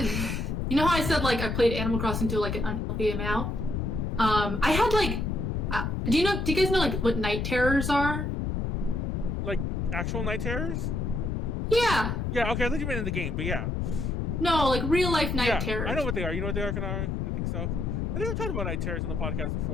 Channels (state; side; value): noise; left; rumble, 1 dB below the sound